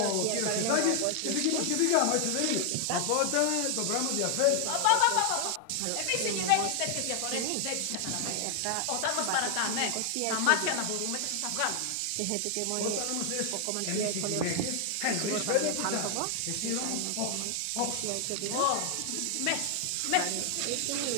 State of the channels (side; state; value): both; different; correlation 0.00